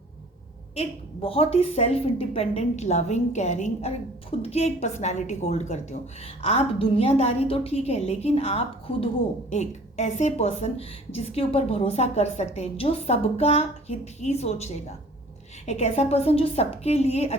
एक बहुत ही सेल्फ इंडिपेंडेंट, लविंग, केयरिंग और खुद की एक पर्सनालिटी होल्ड करते हो। आप दुनियादारी तो ठीक है, लेकिन आप खुद हो एक ऐसे पर्सन जिसके ऊपर भरोसा कर सकते हैं, जो सबका हित ही सोचेगा। एक ऐसा पर्सन जो सबके लिए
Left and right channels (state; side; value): normal; both; correlation 0.50